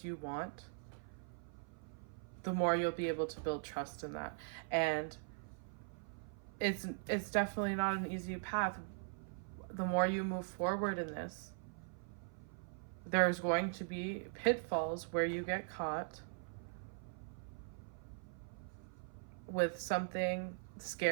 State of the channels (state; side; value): silent; left; 50 dB below the other